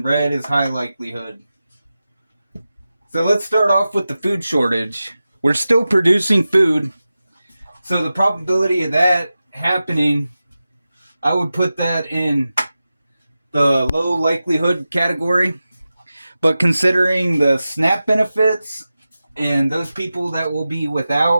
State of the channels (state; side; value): inverted; both; correlation -0.94